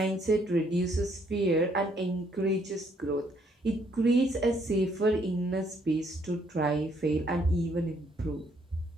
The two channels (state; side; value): normal; both; correlation 0.68